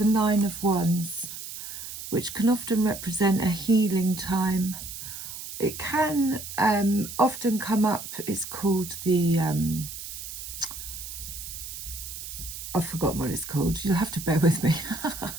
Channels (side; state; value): right; noise; hiss, 10 dB below the sound